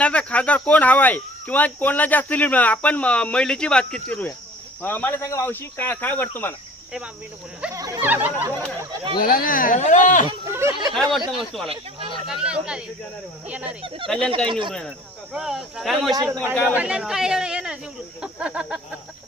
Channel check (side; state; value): both; normal; correlation 0.49